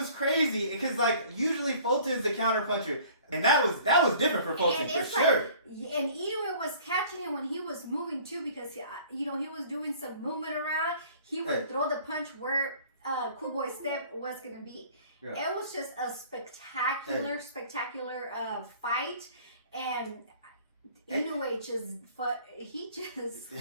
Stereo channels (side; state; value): both; inverted; correlation -0.51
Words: crazy, because like usually Fulton's the counter puncher. And that was different for Fulton, for sure. And Inoue was catching him when he was moving too, because he was doing some movement around. He would throw the punch where Cool Boy Steph was gonna be. Yeah. It was just a spectacular fight, and Inoue